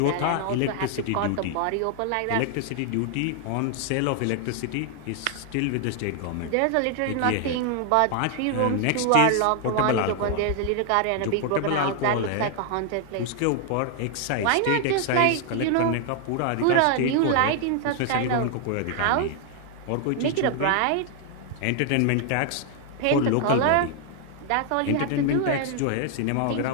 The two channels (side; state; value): both; different; correlation 0.00